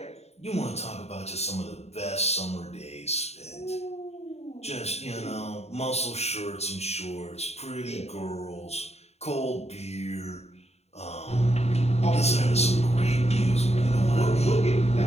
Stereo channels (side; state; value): right; late; 0.31 ms